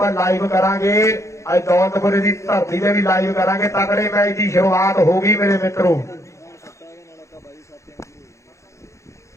लाइव करांगे अज दौलतपुर की धरती से भी लाइव करांगे तगड़े मैच की शुरुआत होगी मेरे मित्रों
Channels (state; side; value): late; right; 0.14 ms